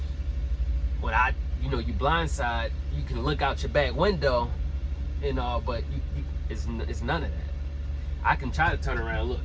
When you blindside, you can look out your back window and all, but it's none of that. I can try to turn around and look.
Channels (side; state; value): both; identical; correlation 1.00